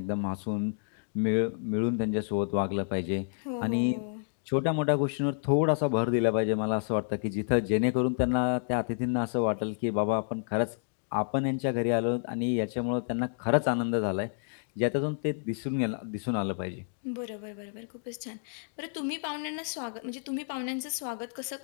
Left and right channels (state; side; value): silent; right; digital silence